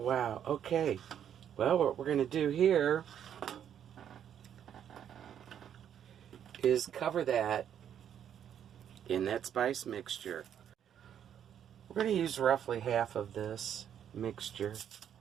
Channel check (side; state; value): left; quieter; 9.3 dB